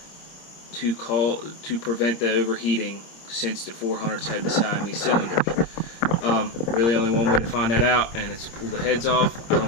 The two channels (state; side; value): late; right; 26 ms